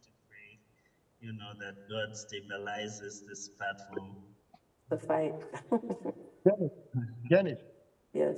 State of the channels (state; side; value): identical; both; correlation 1.00